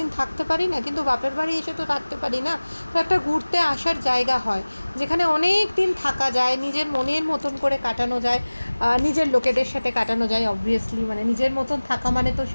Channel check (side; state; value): both; inverted; correlation -1.00